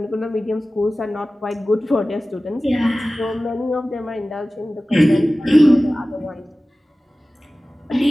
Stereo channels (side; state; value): both; normal; correlation 0.96